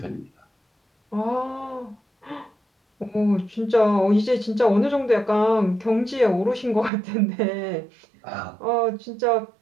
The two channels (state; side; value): drops out; left; at 6.9 s